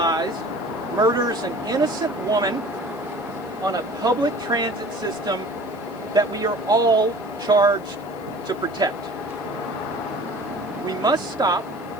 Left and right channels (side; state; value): left; noise; hiss, 27 dB below the sound